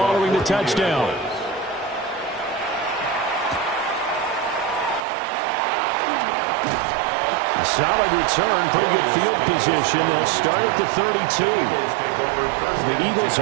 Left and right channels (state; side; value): drops out; left; at 5.0 s